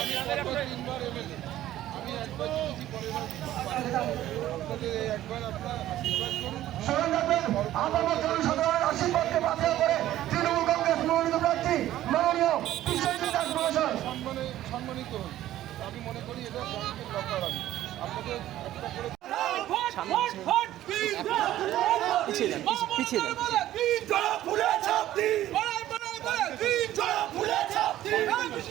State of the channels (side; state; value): left; quieter; 13.6 dB